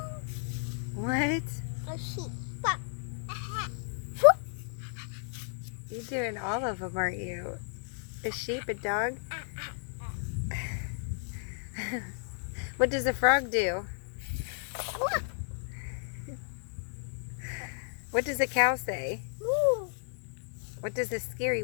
What? A sheep. You're doing all of them, aren't you? A sheep, a dog? What does a frog do? What does a cow say? What does the scary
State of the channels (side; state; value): right; silent; 56 dB below the other